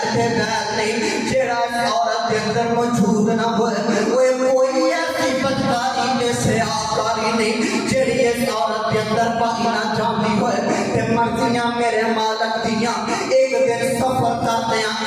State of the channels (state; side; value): identical; both; correlation 1.00